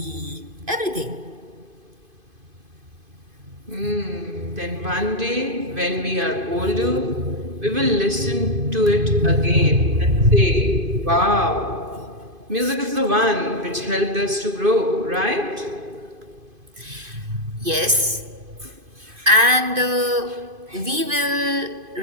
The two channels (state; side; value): late; left; 2.5 ms